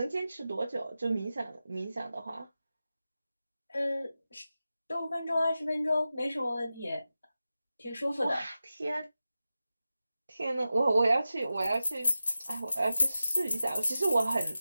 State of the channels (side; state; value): both; inverted; correlation -0.93